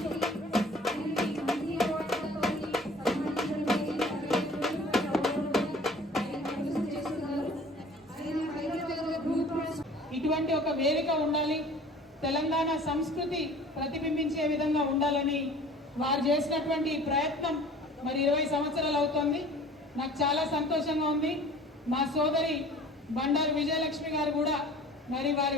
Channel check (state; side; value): normal; both; correlation 0.47